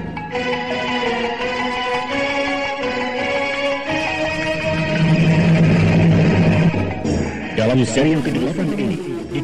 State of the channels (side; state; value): both; identical; correlation 1.00